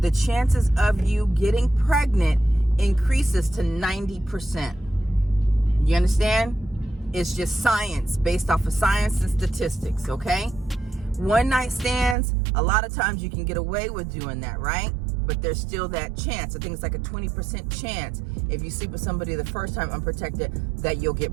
the chances of you getting pregnant increases to 90%. You understand? It's just science, based off of science and statistics, okay? One night stands, a lot of times you can get away with doing that, right? But there's still that chance. I think it's like a 20% chance if you sleep with somebody the first time unprotected that you'll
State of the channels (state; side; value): drops out; left; at 12.2 s